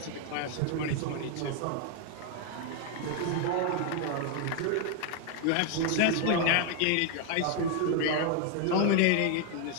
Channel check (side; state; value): both; different; correlation 0.01